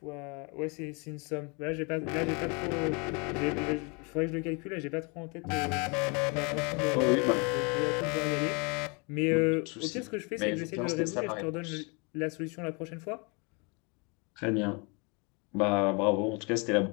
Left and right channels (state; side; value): quieter; right; 31.6 dB